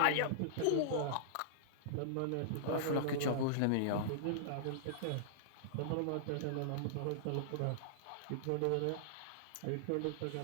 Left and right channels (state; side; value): different; both; correlation -0.02